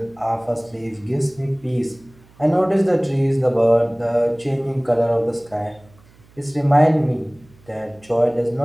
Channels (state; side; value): noise; right; hum, 28 dB below the sound